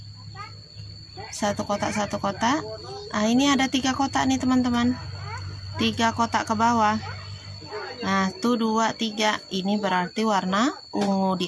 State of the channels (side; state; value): both; identical; correlation 1.00